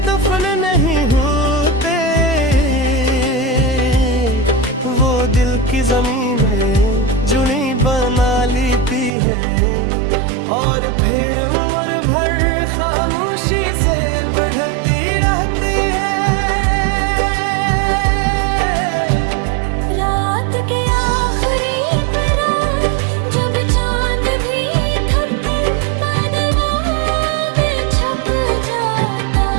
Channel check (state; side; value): drops out; left; at 9.1 s